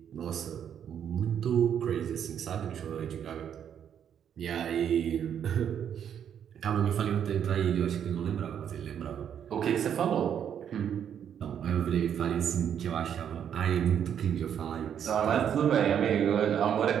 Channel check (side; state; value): left; quieter; 8.8 dB